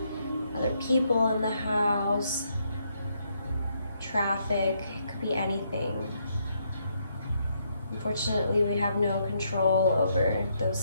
other people in the house, traffic, it could be anything. Unfortunately, we have no control over those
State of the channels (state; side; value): inverted; both; correlation -0.75